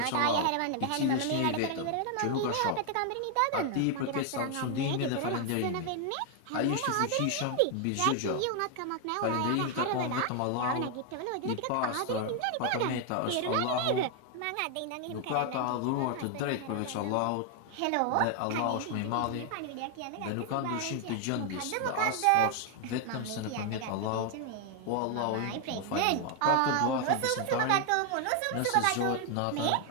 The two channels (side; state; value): both; different; correlation 0.00